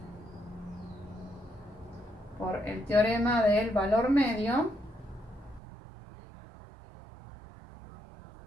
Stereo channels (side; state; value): left; drops out; at 5.6 s